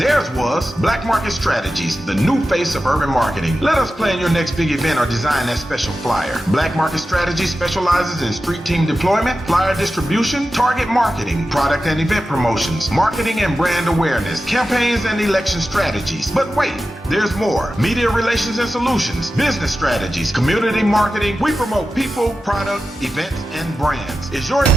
was Black Market Strategies, the new face of urban marketing. Let us plan your next big event or design that special flyer. Black Market Strategies specializes in street team deployment, flyer distribution, target marketing, product and event promotions, marketing and brand awareness, campaigns and election strategies. But wait, there's more. Media relations and solutions, business strategies, community marketing. We promote people, product, events, and brands. Is your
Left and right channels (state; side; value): normal; both; correlation 0.92